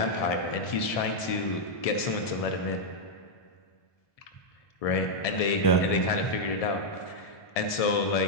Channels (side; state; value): right; late; 1.7 ms